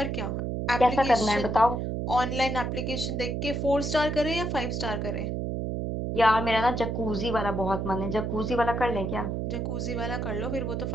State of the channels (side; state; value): right; noise; hum, 2 dB below the sound